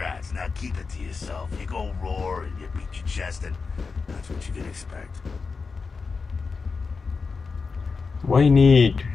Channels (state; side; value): quieter; right; 4.7 dB